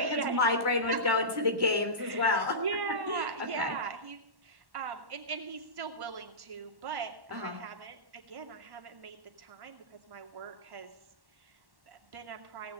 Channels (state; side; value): late; left; 1.1 ms